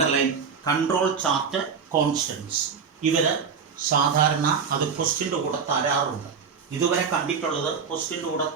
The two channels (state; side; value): quieter; left; 6.0 dB